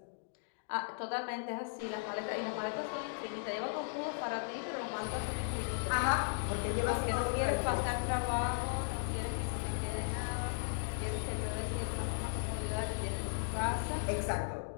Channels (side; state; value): right; silent; digital silence